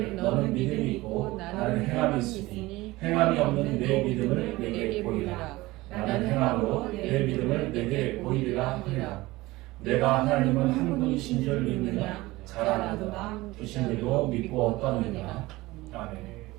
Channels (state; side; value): quieter; left; 19.8 dB